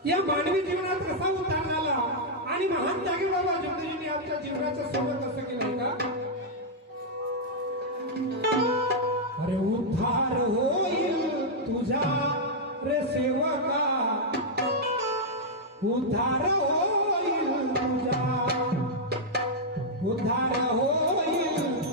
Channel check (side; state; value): both; normal; correlation -0.05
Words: या मानवी जीवनात कसा उतार आला आणि महान त्यागी बाबा जगदीजींनी आमच्या जीवनाचं सोबत असं केलं का? अरे उद्धार होईल तुझा रे सेवका उद्धार होईल तुझा उद्धार होईल